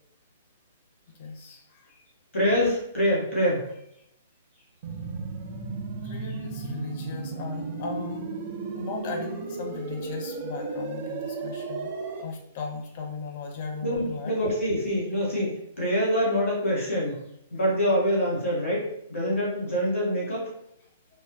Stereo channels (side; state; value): both; inverted; correlation -0.49